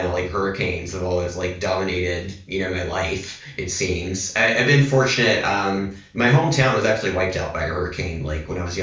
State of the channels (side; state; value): both; identical; correlation 1.00